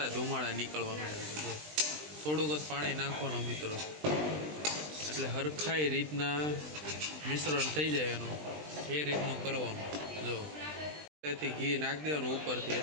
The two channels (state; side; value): late; left; 20 ms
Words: નીકળવા માંડ્યા છે. જો થોડુંક જ પાણી નાખવાનું મિત્રો, એટલે હરખાઈ રીતના મિશ્રણ થઈ જાય એનું. એ રીતનું કરવાનું. જો તેથી ઘી નાખી દેવાનું ઉપરથી,